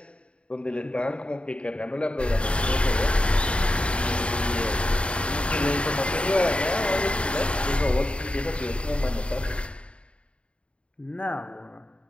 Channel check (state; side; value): late; right; 0.058 ms